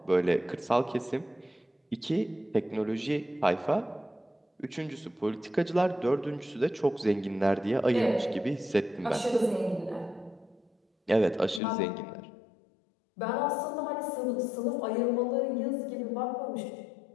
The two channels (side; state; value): right; drops out; at 11.6 s